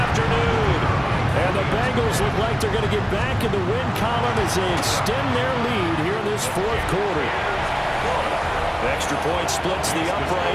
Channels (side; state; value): both; identical; correlation 1.00